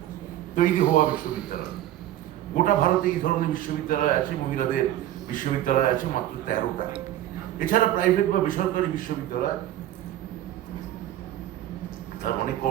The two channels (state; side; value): quieter; left; 13.0 dB